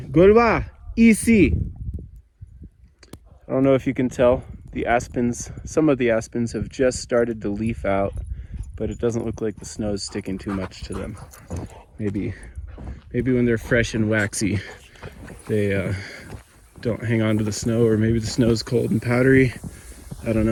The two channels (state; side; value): identical; both; correlation 1.00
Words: EC. I don't know if you can tell, the aspens, some of the aspens have just started to leaf out, but it doesn't look like the snow's sticking too much to them. Maybe when they're fresh and waxy, they don't hang on to the snow, or maybe the snow's cold and powdery. I don't